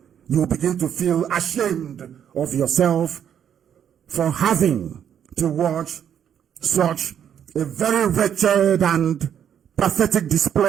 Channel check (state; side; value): quieter; left; 9.0 dB